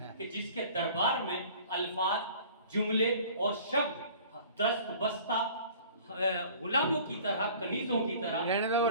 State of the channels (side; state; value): both; inverted; correlation -0.48